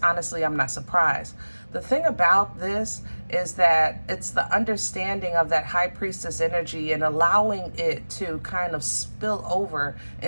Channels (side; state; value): both; inverted; correlation -1.00